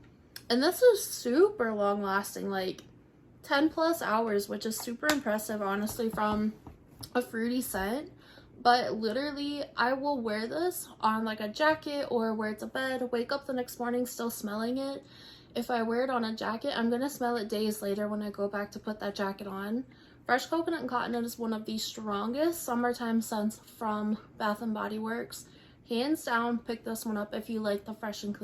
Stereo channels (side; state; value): both; identical; correlation 1.00